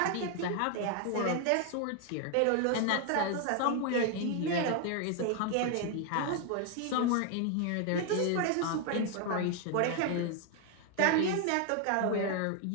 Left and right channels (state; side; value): different; both; correlation 0.00